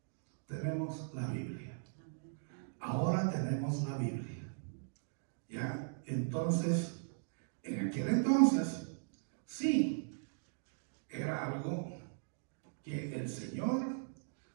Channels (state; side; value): silent; left; digital silence